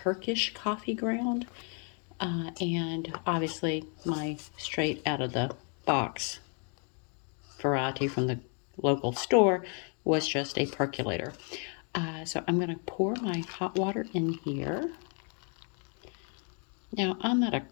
coffee ground, and obviously my straight out of the box variety from the local store was just a percolator. So I'm going to pour my hot water in here. Now, I'm not a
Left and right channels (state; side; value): quieter; right; 39.3 dB